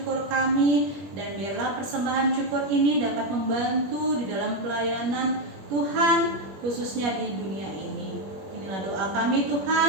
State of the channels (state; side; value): late; left; 21 ms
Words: kami, dan biarlah persembahan syukur ini dapat membantu di dalam pelayanan Tuhan, khususnya di dunia ini. Inilah doa kami